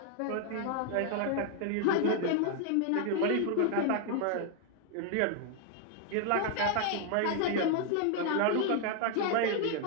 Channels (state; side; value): different; both; correlation 0.00